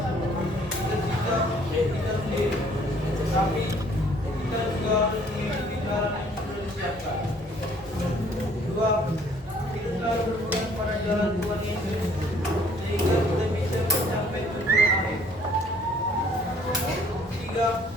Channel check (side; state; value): both; normal; correlation 0.59